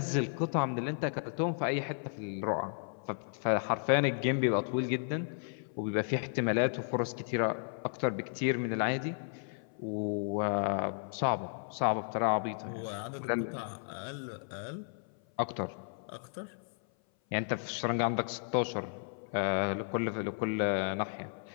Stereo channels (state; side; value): silent; right; 55 dB below the other